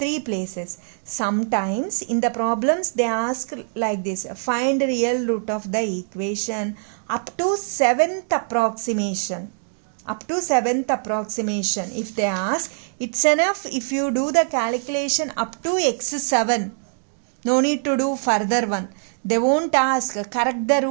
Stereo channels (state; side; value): silent; left; digital silence